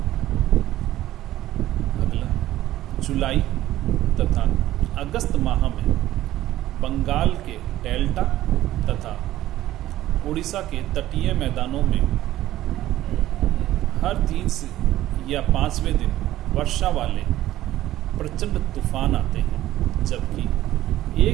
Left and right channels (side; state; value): left; quieter; 14.5 dB